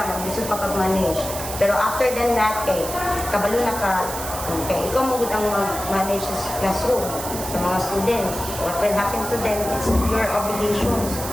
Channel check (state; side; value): noise; right; hiss, 8 dB below the sound